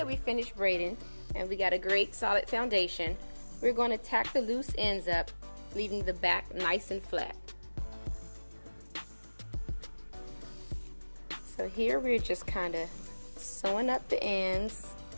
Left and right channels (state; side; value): inverted; both; correlation -1.00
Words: we finished braiding and we got a great solid foundation, we're going to tack the loose ends up, leaving the back nice and flat. So here we're just kind of sewing up the ends